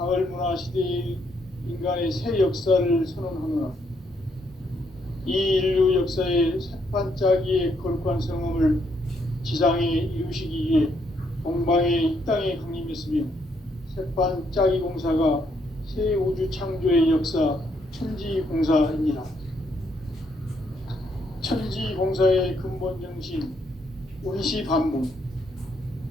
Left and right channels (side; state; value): both; normal; correlation 0.73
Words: 문화 시대의 인간의 새 역사를 선언하노라. 이 인류 역사의 새반짝이의 거룩한 성험을 지상에 이루시기 위해 동방의 이 땅에 강림했으며 새반짝이 공사가 새 우주 창조의 역사 천지공사입니다. 천지공사의 근본 정신 원시반복,